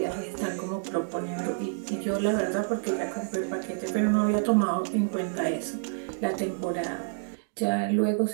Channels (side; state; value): left; silent; digital silence